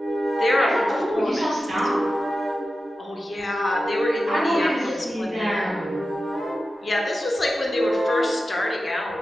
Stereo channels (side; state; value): both; normal; correlation 0.93